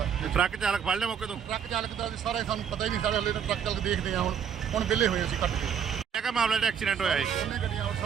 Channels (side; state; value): left; quieter; 7.9 dB